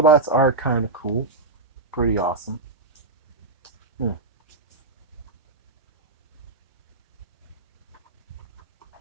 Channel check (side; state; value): left; quieter; 3.3 dB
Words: are kind of cool, pretty awesome. Hmm.